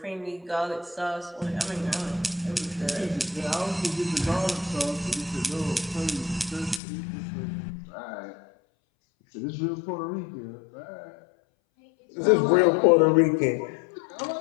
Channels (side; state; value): right; drops out; at 6.8 s